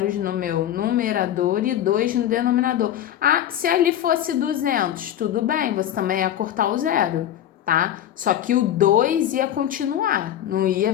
no meu numerador e 2 no denominador. Ah, se ali fosse 200, tudo bem, você também ia cortar o zero, tá? Só que o 2 ia continuar, não ia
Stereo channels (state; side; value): quieter; right; 11.3 dB